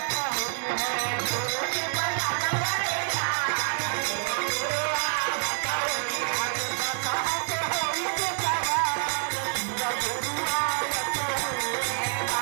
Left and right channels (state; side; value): silent; left; 56 dB below the other